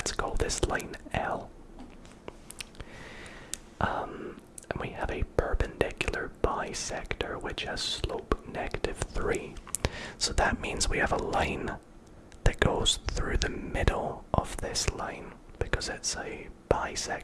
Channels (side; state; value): both; identical; correlation 1.00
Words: call this line L. And we have a perpendicular bisector which has slope -3. So that means we have a line that goes through the middle of this line because it's a